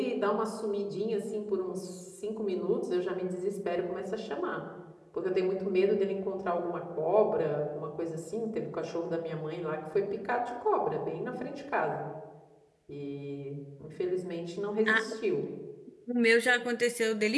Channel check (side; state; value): both; identical; correlation 1.00